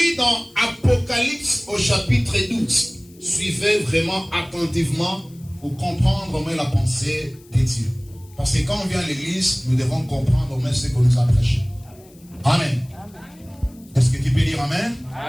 dans Apocalypse au chapitre 12. Suivez vraiment attentivement pour comprendre au moins la pensée de Dieu. Parce que quand on vient à l'église, nous devons comprendre au moins ce qu'on nous a prêché. Amen. Est-ce que tu peux dire amen?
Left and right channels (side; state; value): left; noise; hiss, 27 dB below the sound